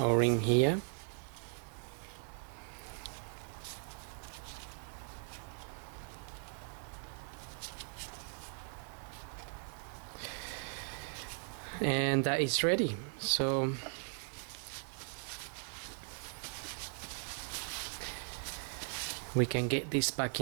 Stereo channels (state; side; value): silent; left; 52 dB below the other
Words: here. And that is ready. So we can get this back